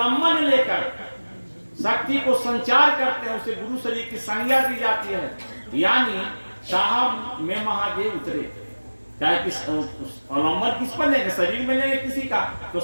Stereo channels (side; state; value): both; inverted; correlation -1.00